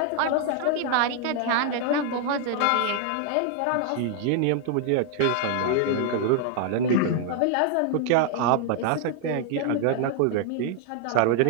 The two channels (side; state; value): both; different; correlation -0.01